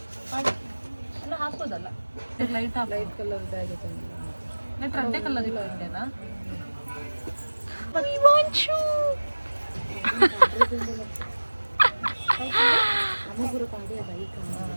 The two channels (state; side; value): inverted; both; correlation -1.00